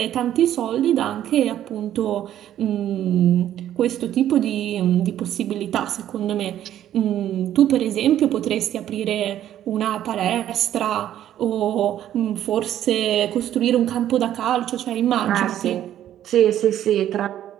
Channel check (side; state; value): left; quieter; 11.6 dB